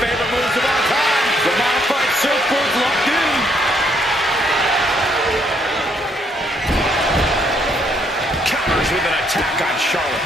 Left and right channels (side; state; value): both; normal; correlation 0.71